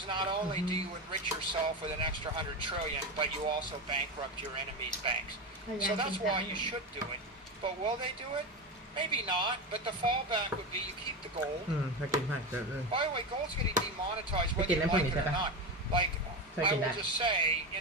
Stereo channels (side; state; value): both; normal; correlation 0.19